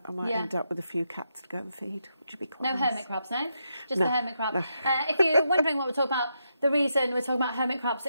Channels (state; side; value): inverted; both; correlation -0.82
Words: I might end up with a few cats to go and feed, which would be quite nice. No hermit crabs, no? Just no, the hermit crab. No. If you're wondering what we're talking about, the reason we're talking about hermit crabs